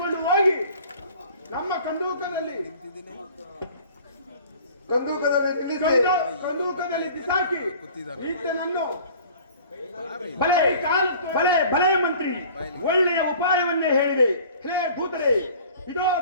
ಹೋಗಿ ನಮ್ಮ ಕಂದೂಕದಲ್ಲಿ ಬಿಸಾಕಿ ಈತನನ್ನು ಭಲೆ ಭಲೆ ಭಲೆ ಮಂತ್ರಿ, ಒಳ್ಳೆಯ ಉಪಾಯವನ್ನೇ ಹೇಳಿದೆ. ಹೇ ದೂತರೇ, ಇದೋ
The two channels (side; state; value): both; inverted; correlation -0.47